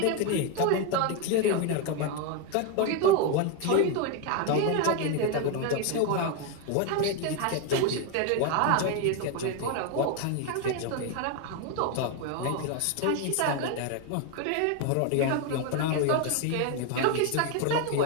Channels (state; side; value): different; both; correlation 0.01